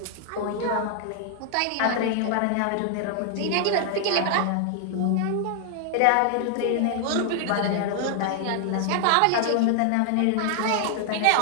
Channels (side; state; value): both; different; correlation 0.00